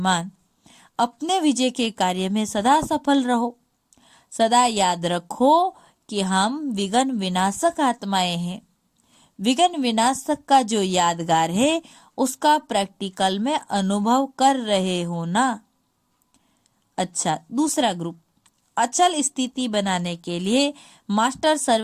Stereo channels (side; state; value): both; identical; correlation 1.00